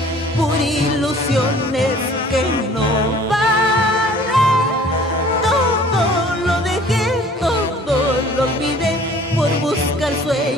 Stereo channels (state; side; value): normal; both; correlation 0.51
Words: por ilusiones que no valen. Lo olvidé por buscar